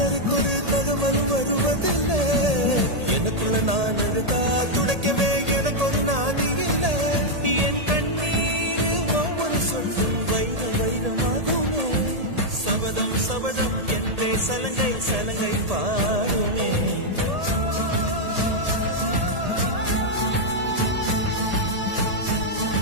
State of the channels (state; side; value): late; left; 1.8 ms